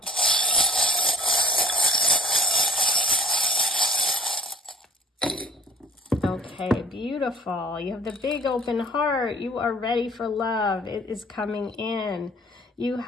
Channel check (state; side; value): normal; both; correlation 0.46